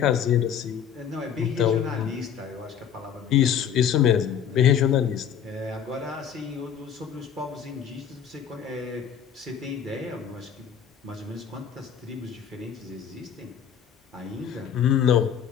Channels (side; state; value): right; quieter; 8.4 dB